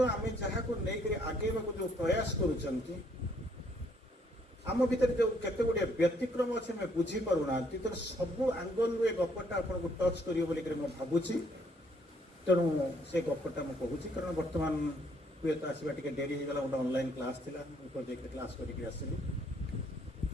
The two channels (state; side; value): normal; both; correlation 0.67